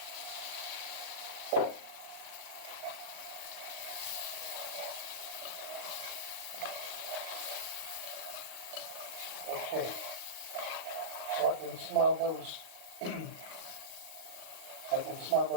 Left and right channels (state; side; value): late; left; 38 ms